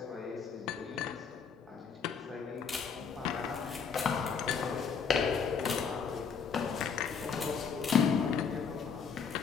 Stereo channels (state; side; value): quieter; right; 6.2 dB